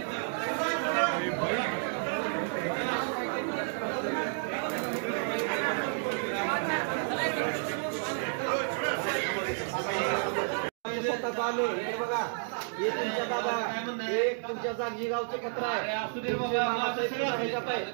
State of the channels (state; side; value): silent; left; 57 dB below the other